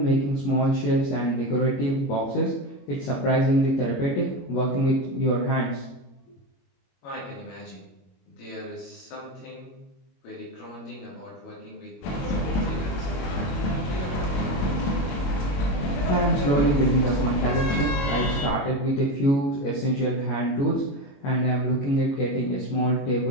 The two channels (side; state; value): right; late; 22 ms